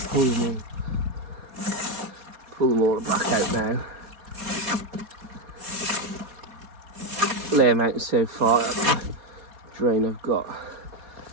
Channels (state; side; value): late; left; 4.2 ms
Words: pull them all back out now. Lay them out so far up the drain I've got.